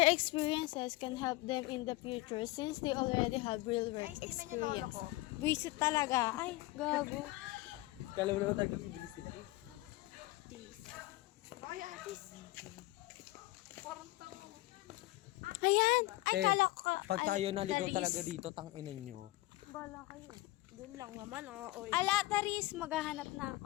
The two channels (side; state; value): right; quieter; 19.4 dB